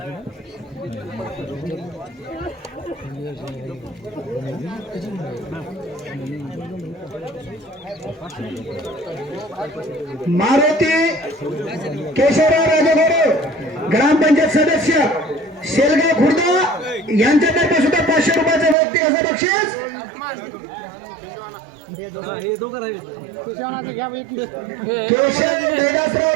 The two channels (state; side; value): drops out; left; at 18.8 s